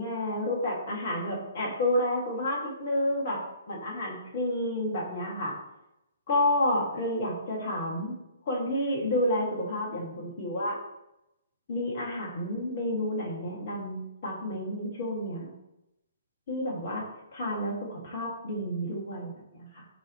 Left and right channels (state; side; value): inverted; both; correlation -0.50